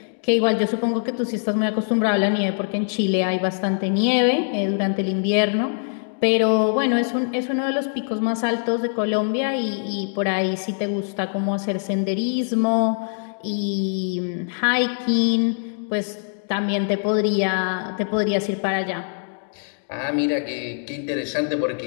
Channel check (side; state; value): right; silent; digital silence